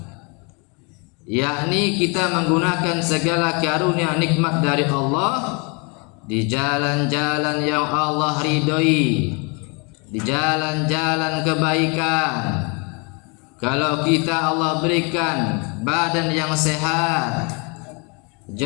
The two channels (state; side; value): quieter; right; 32.1 dB